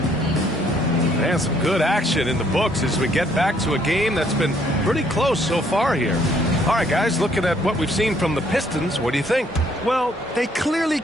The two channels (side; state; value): both; normal; correlation 0.66